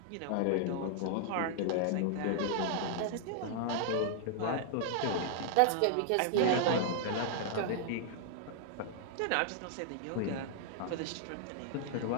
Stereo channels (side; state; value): both; different; correlation -0.01